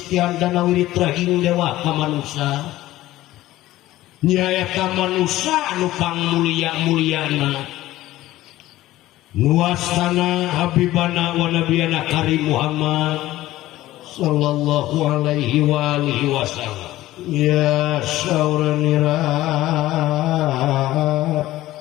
tian dana wirid trahing dewa ka manusia nyaeta manusia anu pangmulia-muliana nuwastana habibana wa nabiyana karim Muhammad sallallahu alaihi wa alihi wasallam ya sauranira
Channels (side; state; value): right; quieter; 15.8 dB